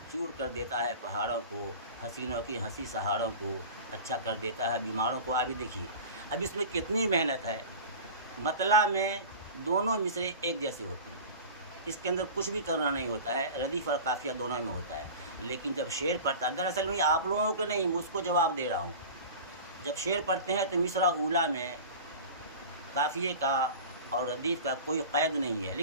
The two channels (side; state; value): both; inverted; correlation -0.35